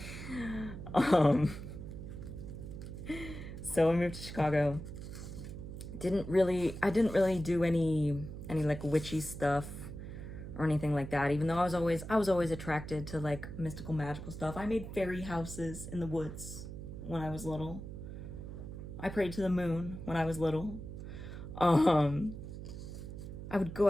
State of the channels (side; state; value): right; noise; hum, 9 dB below the sound